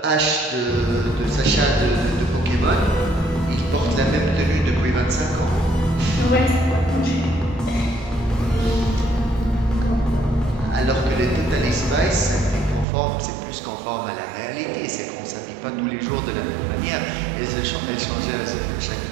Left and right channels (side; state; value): left; drops out; at 12.9 s